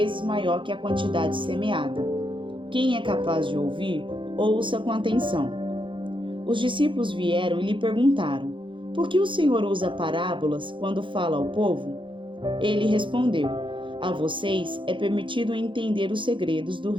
maior que a quantidade semeada. Quem é capaz de ouvir, ouça com atenção. Os discípulos vieram e lhe perguntaram: Por que o Senhor usa parábolas quando fala ao povo? Ele respondeu: A vocês é permitido entender os segredos do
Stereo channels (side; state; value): left; late; 0.24 ms